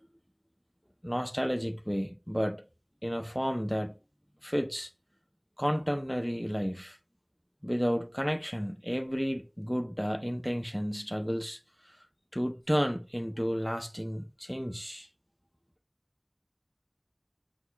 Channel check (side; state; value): both; identical; correlation 1.00